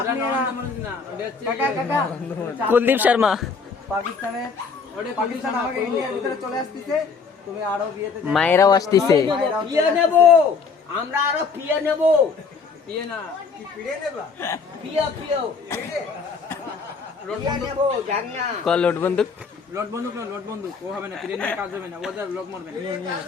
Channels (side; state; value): right; quieter; 5.1 dB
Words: নিয়ে ना কাকা কাকা কুলদীপ শর্মা পাকিস্তানের পাকিস্তান আমাকে ইন্ডিয়ার ভিতরে চলে আসছে তুমি আরো বিয়েতে মায়েরাও আসতেছে পিয়ে নেব আমরা আরো পিয়ে নেব पिए ना পিয়ে পিয়ে পিয়ে নেব জান না কল লোড বন্দুক लोट बंदूक वो হবে না প্লেন में কাজ হবে না ওদের লোক মরবে